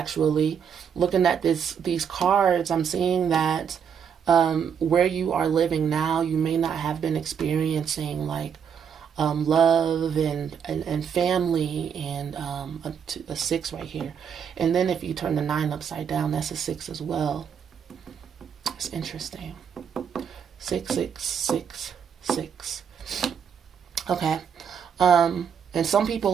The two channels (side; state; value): left; quieter; 7.5 dB